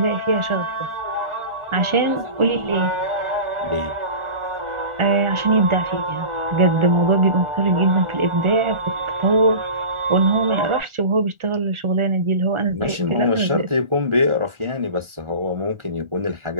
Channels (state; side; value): late; left; 1.4 ms